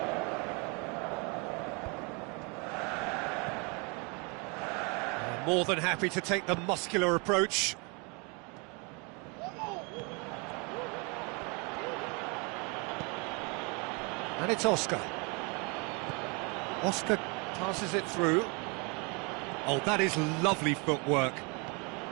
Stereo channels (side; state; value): left; quieter; 31.6 dB